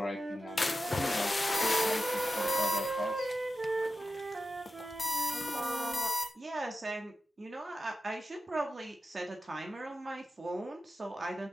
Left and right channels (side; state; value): both; normal; correlation 0.92